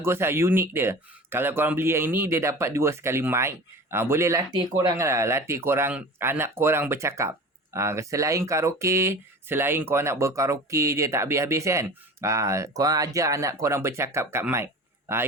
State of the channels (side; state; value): both; normal; correlation 0.36